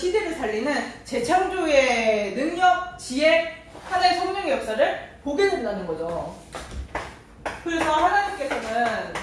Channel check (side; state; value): both; identical; correlation 1.00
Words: 살리는 재창조의 능력, 지혜, 하나의 성령의 역사를 보게 된다는 거죠. 그래서 하나님께서는